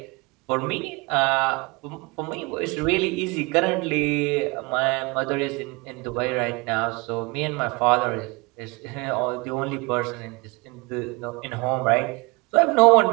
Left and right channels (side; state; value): left; quieter; 27.0 dB